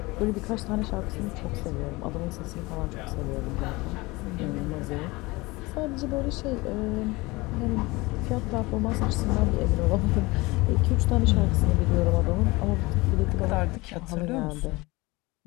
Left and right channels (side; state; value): right; quieter; 22.7 dB